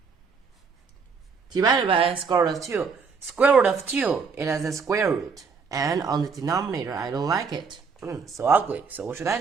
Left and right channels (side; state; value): left; quieter; 5.3 dB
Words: Divided by square root of 2. Square root of 2, it has a square root, and on the denominator, I don't like it. So ugly. So what should I